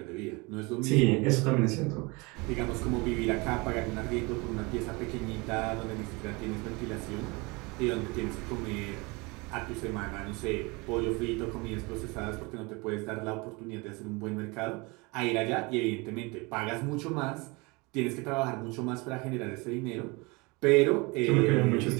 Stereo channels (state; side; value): quieter; left; 26.6 dB